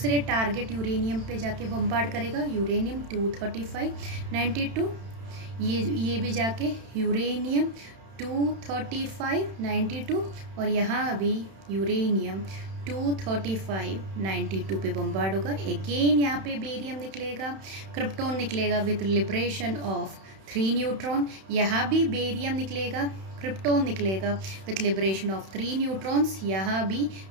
टारगेट यूरेनियम पे जाके बम्बार्ड करेगा, यूरेनियम 235 92, ये भी जाके यूरेनियम 235 92 और यहाँ भी यूरेनियम 235 92 पे बम्बार्ड होगा। अगेन यहाँ पे बेरियम निकलेगा, क्रिप्टॉन निकलेगा विथ लिबरेशन ऑफ 3 न्यूट्रॉन, यहाँ भी बेरियम निकलेगा, क्रिप्टॉन निकलेगा विथ लिबरेशन ऑफ 3 न्यूट्रॉन्स, यहाँ भी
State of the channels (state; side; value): late; left; 31 ms